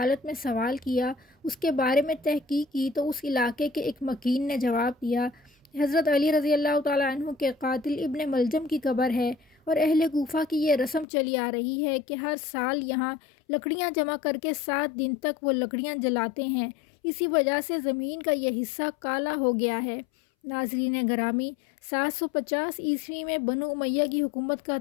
میں سوال کیا، اس کے بارے میں تحقیق کی تو اس علاقے کے ایک مکین نے جواب دیا حضرت علی رضی اللہ تعالیٰ عنہ کے قاتل ابن ملجم کی قبر ہے، اور اہل کوفہ کی یہ رسم چلی آ رہی ہے کہ ہر سال یہاں لکڑیاں جمع کر کے 7 دن تک وہ لکڑیاں جلاتے ہیں، اسی وجہ سے زمین کا یہ حصہ کالا ہو گیا ہے۔ ناظرین گرامی، 750 عیسوی میں بنو امیہ کی حکومت کا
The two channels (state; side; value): drops out; right; at 11.1 s